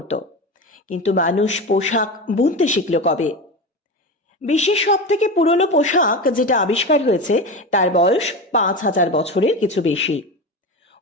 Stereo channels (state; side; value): normal; both; correlation 0.23